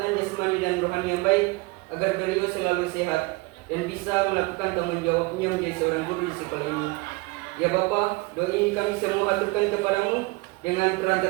jasmani dan rohani yang baik, agar beliau selalu sehat dan bisa melakukan tanggung jawabnya menjadi seorang guru di sekolah ini. Ya Bapa, doa ini kami semua haturkan kepadamu dengan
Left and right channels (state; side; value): quieter; left; 24.4 dB